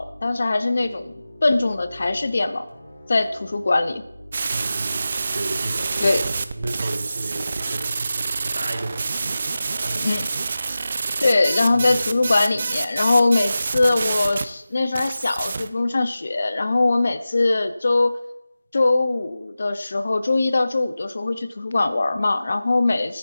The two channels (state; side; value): inverted; both; correlation -0.95